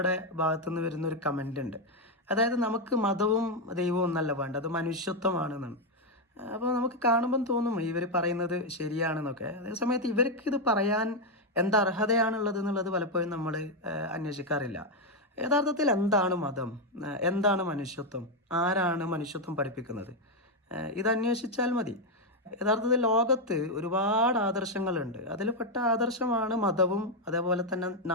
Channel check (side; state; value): both; normal; correlation 0.03